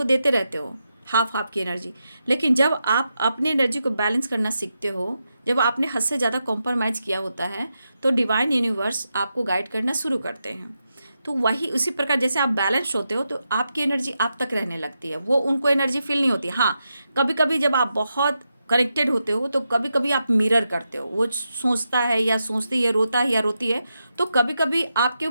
देते रहते हो, हाफ हाफ की एनर्जी, लेकिन जब आप अपनी एनर्जी को बैलेंस करना सीखते हो, जब आपने हद से ज़्यादा कॉम्प्रोमाइज़ किया होता है, तो डिवाइन यूनिवर्स आपको गाइड करना शुरू करते हैं। तो वही उसी प्रकार जैसे आप बैलेंस होते हो तो आपकी एनर्जी आप तक रहने लगती है, वो उनको एनर्जी फील नहीं होती। हाँ, कभी कभी जब आप बहुत कनेक्टेड होते हो तो कभी कभी आप मिरर करते हो, वो सोचता है या सोचती है, रोता है या रोती है, तो कभी कभी आपके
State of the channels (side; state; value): both; inverted; correlation -0.87